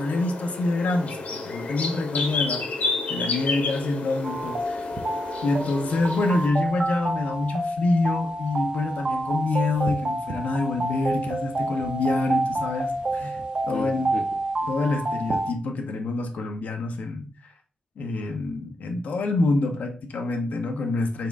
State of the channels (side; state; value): both; normal; correlation 0.82